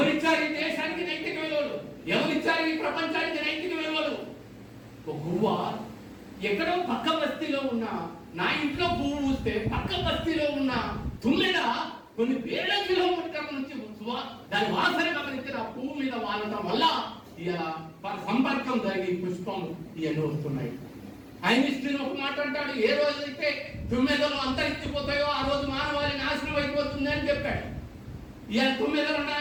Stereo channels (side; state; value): both; identical; correlation 1.00